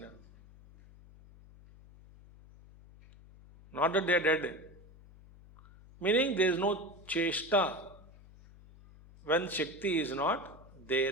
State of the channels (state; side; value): noise; left; hum, 22 dB below the sound